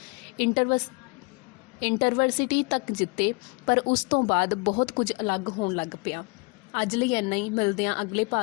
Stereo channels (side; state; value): right; quieter; 30.6 dB